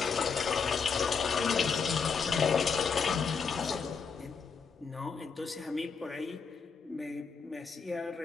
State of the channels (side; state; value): right; quieter; 5.6 dB